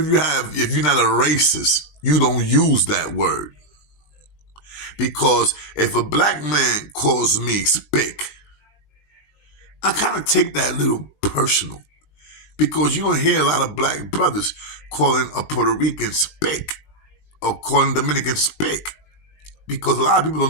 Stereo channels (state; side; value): late; right; 19 ms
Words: you're not a racist, you don't use that word. Because if a black man calls me spick, I kind of take that a little personal. Because you don't hear a lot of black brothers calling a Puerto Rican spick or calling Dominican spick. Because a lot of people don't